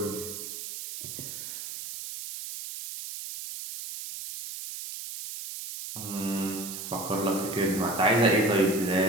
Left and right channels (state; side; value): noise; right; hiss, 8 dB below the sound